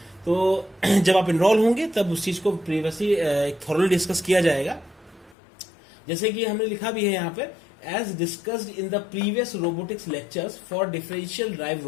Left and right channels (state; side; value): drops out; right; at 5.4 s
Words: तो जब आप इनरोल होंगे तब उस चीज को प्रीवियसली एक थॉरली डिस्कस किया जाएगा। जैसे कि हमने लिखा भी है यहाँ पे, as discussed in the previous robotics lectures for differential drive